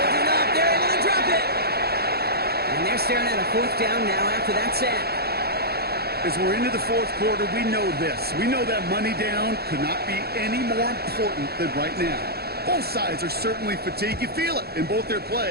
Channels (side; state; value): left; late; 0.46 ms